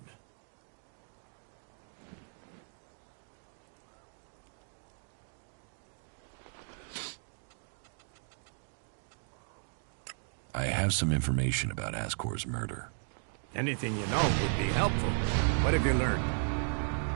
I have some information about Ascor's murder. Anything you know would be helpful. What have you learned?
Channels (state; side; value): silent; left; 54 dB below the other